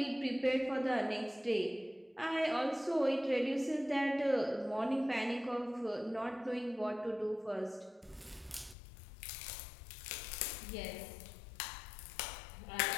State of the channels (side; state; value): right; drops out; at 8.8 s